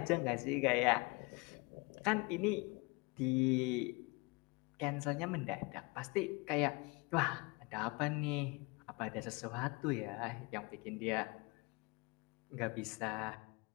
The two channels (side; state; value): right; quieter; 27.2 dB